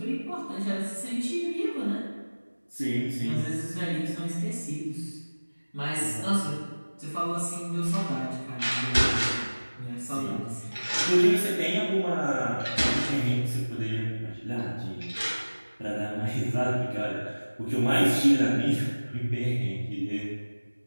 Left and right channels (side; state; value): both; inverted; correlation -1.00